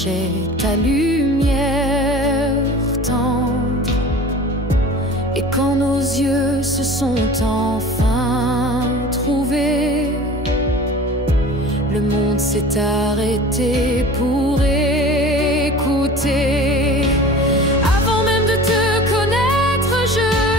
ta lumière tendre. Et quand nos yeux se sont enfin trouvés, le monde s'est arrêté pour écouter. Avant même de te connaître, je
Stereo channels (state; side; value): normal; both; correlation 0.40